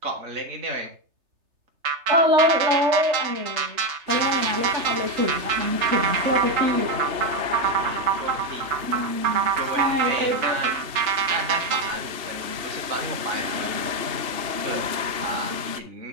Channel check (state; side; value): late; left; 3.3 ms